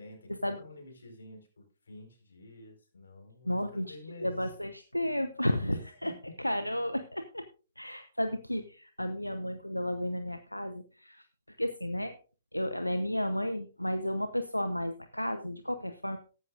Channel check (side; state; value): both; inverted; correlation -0.96